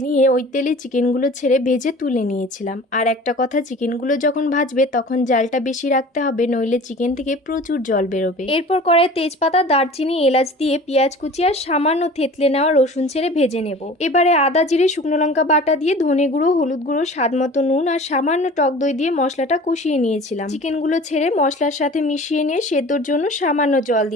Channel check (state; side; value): normal; both; correlation 0.42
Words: ওই তেলে চিকেনগুলো ছেড়ে ভেজে তুলে নিয়েছিলাম। আর একটা কথা, চিকেনগুলো যখন ভাজবে তখন জালটা বেশি রাখতে হবে, নইলে চিকেন থেকে প্রচুর জল বেরোবে। এরপর কড়াইয়ে তেজপাতা, দারচিনি, এলাচ দিয়ে পেঁয়াজ কুচি আর সামান্য থেতলে নেওয়া রসুন ছেড়ে ভেজে নেব। এবারে আদা, জিরে, শুকনো লঙ্কা বাটা দিয়ে ধনে গুঁড়ো, হলুদ গুঁড়ো, স্বাদ মতো নুন আর সামান্য টক দই দিয়ে মশলাটা কষিয়ে নিয়েছিলাম। চিকেনগুলো ছেড়ে মশলার সাথে মিশিয়ে নিয়ে সেদ্ধর জন্য সামান্য জল